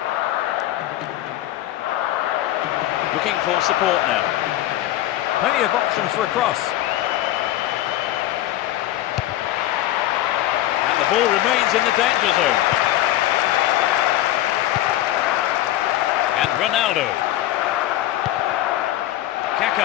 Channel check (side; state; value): right; quieter; 14.3 dB